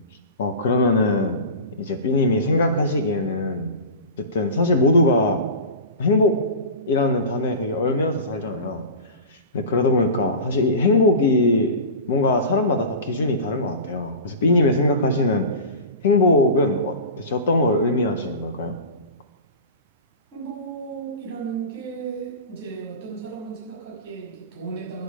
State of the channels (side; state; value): both; inverted; correlation -0.31